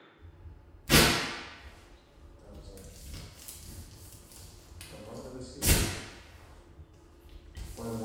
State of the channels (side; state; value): both; identical; correlation 1.00